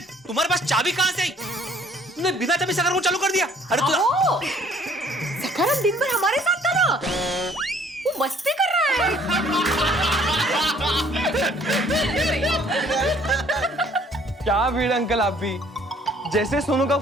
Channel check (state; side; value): normal; both; correlation 0.59